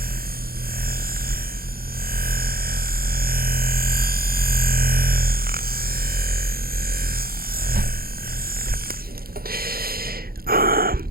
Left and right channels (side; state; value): left; late; 0.44 ms